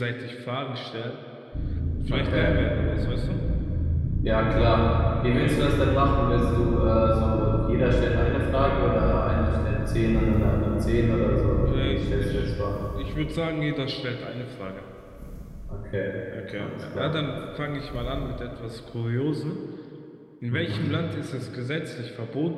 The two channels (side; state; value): both; identical; correlation 1.00